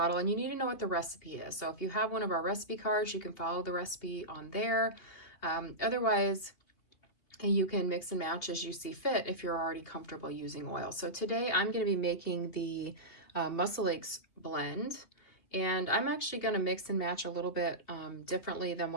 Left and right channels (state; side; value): late; right; 2.8 ms